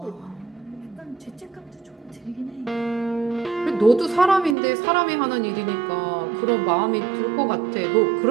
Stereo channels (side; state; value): left; drops out; at 4.5 s